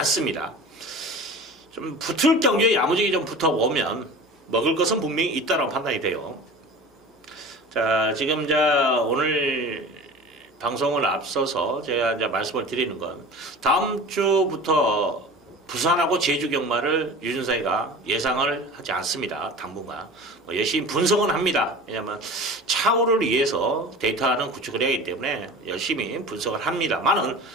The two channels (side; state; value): both; normal; correlation 0.37